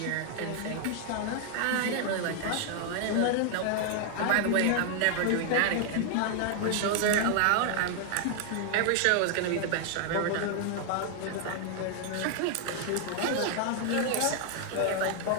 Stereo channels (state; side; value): different; both; correlation 0.00